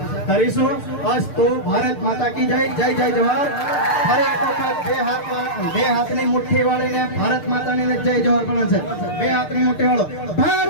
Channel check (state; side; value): late; right; 6.6 ms